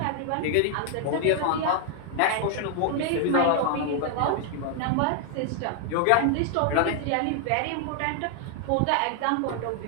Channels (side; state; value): both; different; correlation 0.00